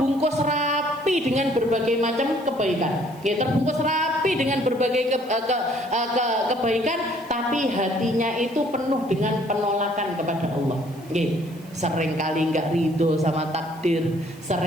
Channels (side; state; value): right; noise; hiss, 26 dB below the sound